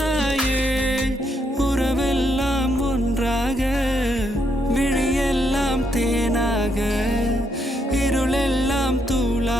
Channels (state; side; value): normal; both; correlation 0.76